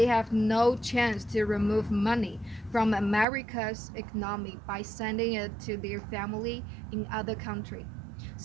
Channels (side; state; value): left; drops out; at 3.2 s